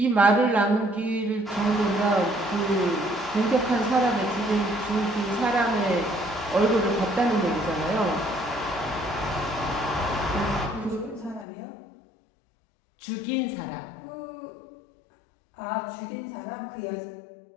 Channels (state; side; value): drops out; right; at 11.5 s